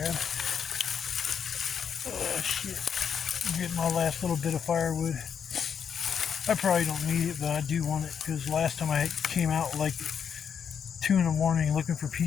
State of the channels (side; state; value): right; quieter; 7.5 dB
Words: Oh shit. I'm getting my last little bit of firewood. I probably don't need it, but I do want it because last time I came out like 2 in the morning looking for